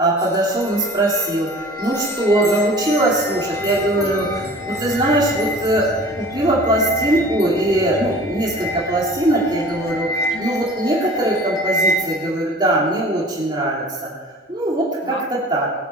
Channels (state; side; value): normal; both; correlation 0.44